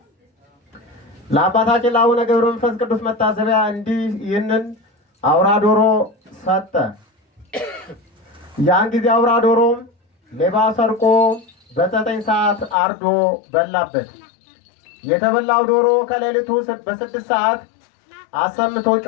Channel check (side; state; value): right; drops out; at 12.8 s